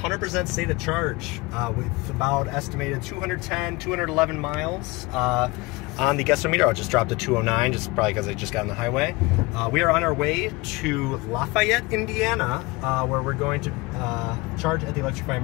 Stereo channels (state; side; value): quieter; right; 23.4 dB